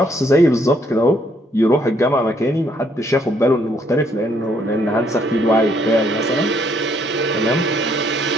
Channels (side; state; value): both; normal; correlation 0.69